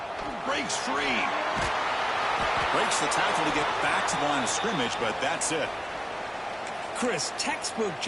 Breaks free. Breaks the tackle to get back to the line of scrimmage, but that's it. Chris, textbook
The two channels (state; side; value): identical; both; correlation 1.00